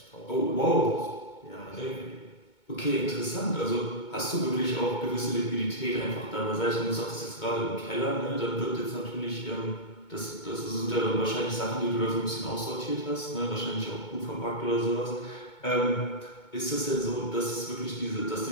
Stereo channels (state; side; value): late; right; 2.2 ms